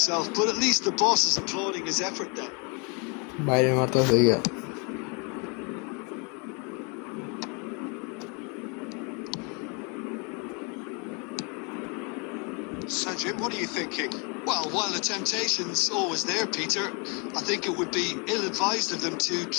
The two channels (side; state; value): right; quieter; 33.6 dB